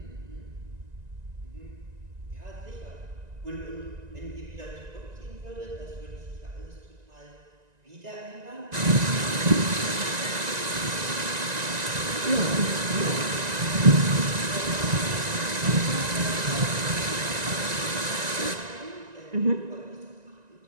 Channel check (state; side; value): late; left; 1.9 ms